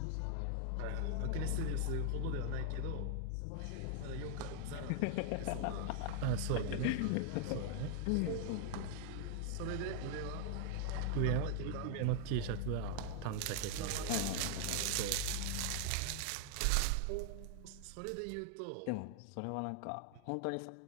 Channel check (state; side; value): different; both; correlation 0.00